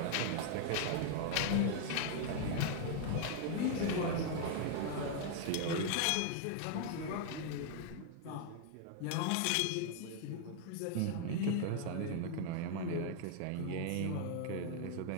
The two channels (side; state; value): both; different; correlation 0.00